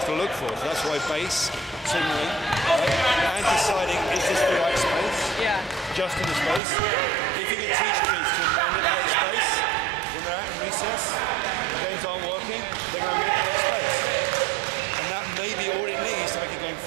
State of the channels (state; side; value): drops out; left; at 6.6 s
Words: to look for. So that's why base, signaling, right? And deciding is this the right space? Yeah. Just in the space. If you can teach kids to manipulate space when they're out in recess, games aren't working, they're going to manipulate space. And that